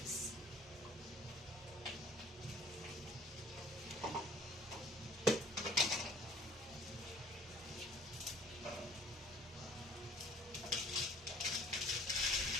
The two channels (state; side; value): normal; both; correlation 0.54